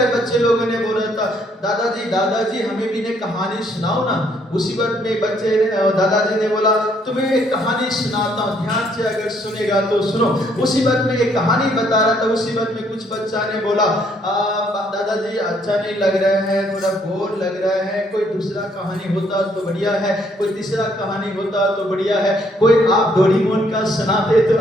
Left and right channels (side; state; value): both; normal; correlation 0.68